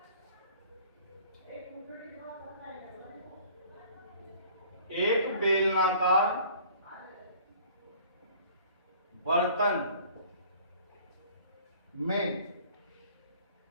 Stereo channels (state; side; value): inverted; both; correlation -0.51